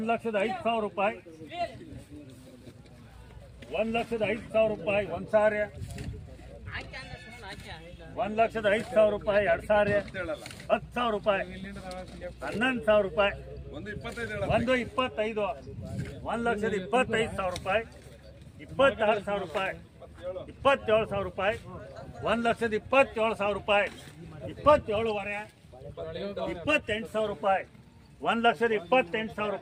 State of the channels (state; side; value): identical; both; correlation 1.00